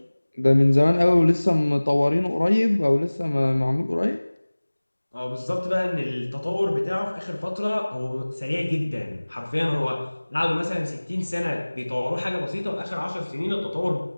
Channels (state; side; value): inverted; both; correlation -1.00